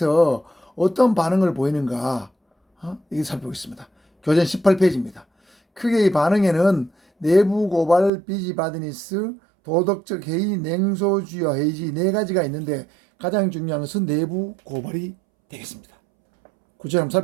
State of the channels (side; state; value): left; drops out; at 8.1 s